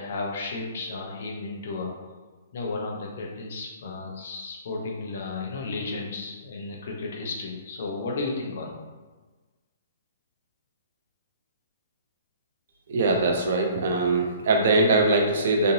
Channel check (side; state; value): both; inverted; correlation -0.52